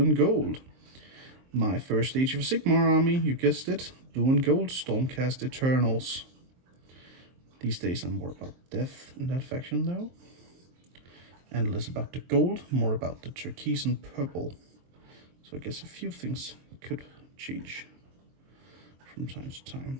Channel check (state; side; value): late; left; 23 ms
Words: gold. My first Age of Sigmar army, you guessed it, blue and gold Stormcast Eternals. These days I'm more about death in that faction though, and less about the gold, more about the turquoise and purple. So I guess a few things could change from time to time.